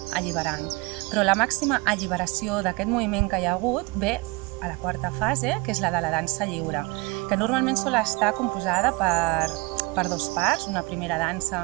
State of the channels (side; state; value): left; quieter; 25.6 dB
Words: alliberant. Però la màxima alliberació d'aquest moviment que hi ha hagut ve a la quarta fase, que és la de la dansa lliure, que normalment sol estar composada per dos parts, una primera dansa